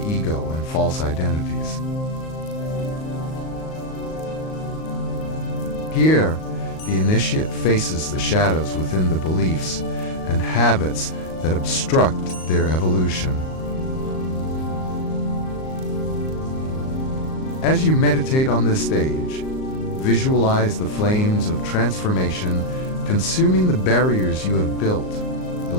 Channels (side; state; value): right; late; 38 ms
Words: ego and false identities. Here, the initiate faces the shadows within the beliefs and habits that obstruct their evolution. As you meditate on this stage, visualize the flames of transformation consuming the barriers you have built,